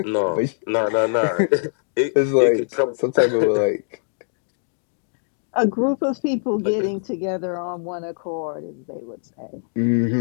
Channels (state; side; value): silent; right; digital silence